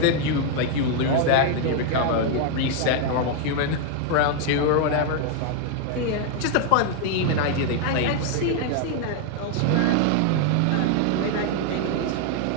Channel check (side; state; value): both; different; correlation 0.00